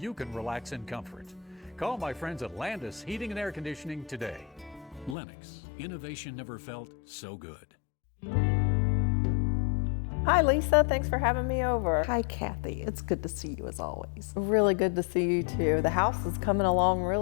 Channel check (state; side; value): drops out; right; at 5.2 s